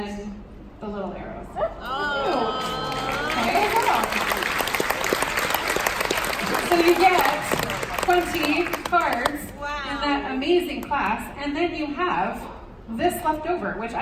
the little arrows. Oh. Okay. So you get 20 cards in that amazing class, and then you have this left over, which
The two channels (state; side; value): identical; both; correlation 1.00